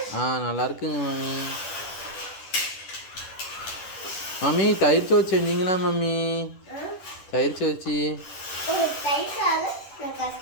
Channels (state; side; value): late; right; 10 ms